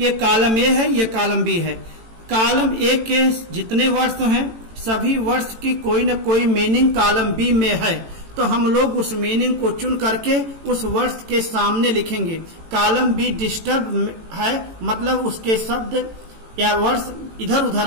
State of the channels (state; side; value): late; left; 18 ms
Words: कॉलम ए है, ये कॉलम बी है। कॉलम ए के जितने वर्ड्स हैं सभी वर्ड्स की कोई न कोई मीनिंग कॉलम बी में है, तो हम लोग उस मीनिंग को चुन करके उस वर्ड्स के सामने लिखेंगे। कॉलम बी डिस्टर्ब है, मतलब उसके शब्द या वर्ड्स इधर उधर